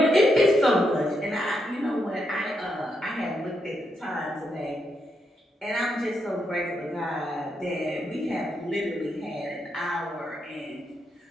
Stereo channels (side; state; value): both; normal; correlation 0.81